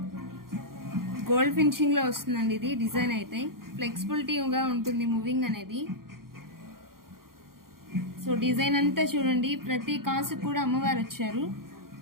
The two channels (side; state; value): left; late; 0.92 ms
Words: గోల్డ్ ఫినిషింగ్ లో వస్తుందండి. ఇది డిజైన్ అయితే ఫ్లెక్సిబిలిటీగా ఉంటుంది మూవింగ్ అనేది. సో డిజైన్ అంతా చూడండి, ప్రతి కాసు కూడా అమ్మవారు వచ్చారు.